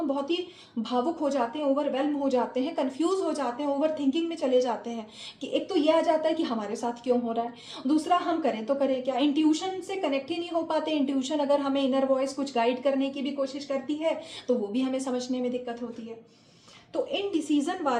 बहुत ही भावुक हो जाते हैं, ओवरवेल्म हो जाते हैं, कंफ्यूज हो जाते हैं, ओवर थिंकिंग में चले जाते हैं कि एक तो ये आ जाता है कि हमारे साथ क्यों हो रहा है, दूसरा हम करें तो करें क्या। इंट्यूशन से कनेक्ट ही नहीं हो पाते। इंट्यूशन अगर हमें इनर वॉइस कुछ गाइड करने की भी कोशिश करती है तो वो भी हमें समझने में दिक्कत होती है। तो इन डिसीजन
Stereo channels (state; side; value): identical; both; correlation 1.00